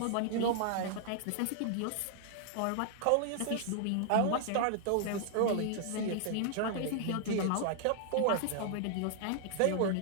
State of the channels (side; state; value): both; different; correlation -0.01